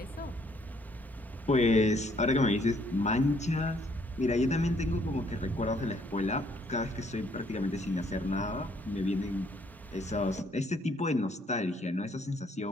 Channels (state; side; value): normal; both; correlation 0.66